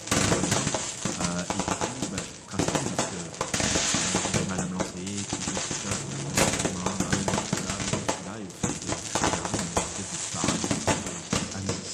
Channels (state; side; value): identical; both; correlation 1.00